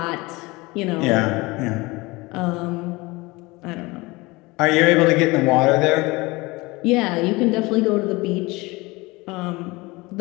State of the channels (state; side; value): quieter; right; 23.0 dB